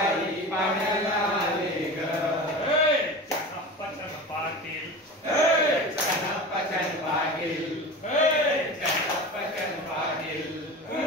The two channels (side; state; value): both; normal; correlation 0.31